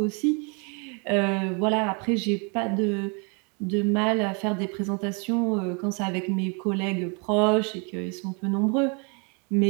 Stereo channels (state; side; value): quieter; left; 34.7 dB